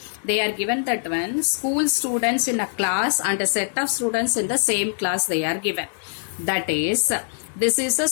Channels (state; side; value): silent; right; 63 dB below the other